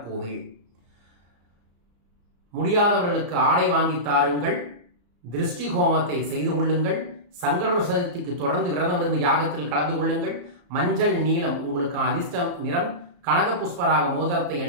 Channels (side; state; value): left; late; 34 ms